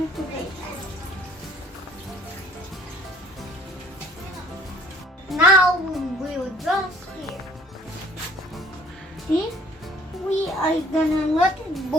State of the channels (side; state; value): both; normal; correlation 0.57